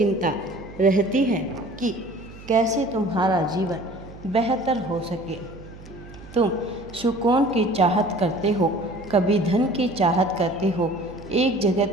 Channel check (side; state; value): right; noise; hum, 17 dB below the sound